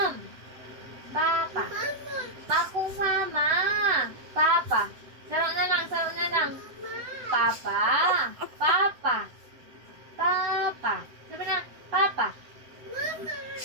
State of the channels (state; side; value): late; left; 8.0 ms